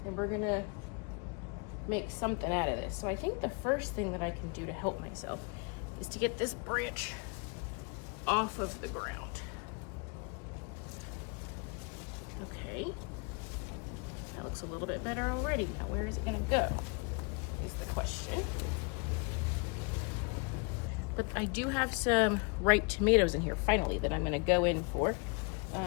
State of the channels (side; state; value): right; quieter; 32.8 dB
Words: And we're gonna make something out of this. So I think the first thing that I can do to help myself is to get this branch off of the ground. Okay. That looks a little bit better already. Now where is it gonna go is the question. But I do have some ripe tomatoes in here finally that I'm gonna go in for.